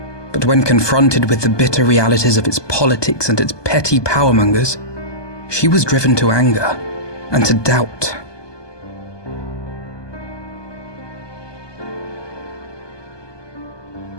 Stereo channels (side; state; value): right; late; 1.2 ms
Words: But when confronted with the bitter realities of its politics and its petty powermongers, she was driven to anger and to doubt.